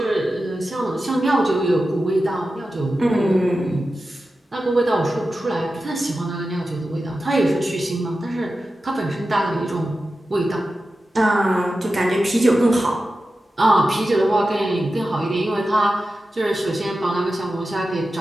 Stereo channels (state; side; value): normal; both; correlation 0.92